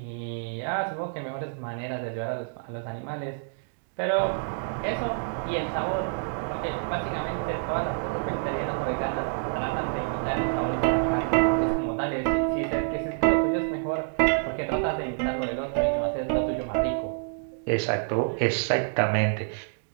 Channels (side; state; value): left; silent; digital silence